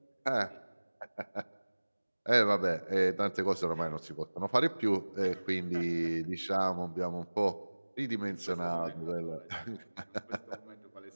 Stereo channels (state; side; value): inverted; both; correlation -1.00